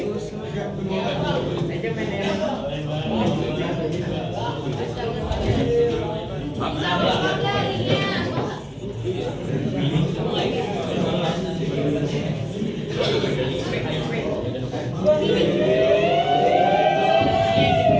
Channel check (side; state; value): both; identical; correlation 1.00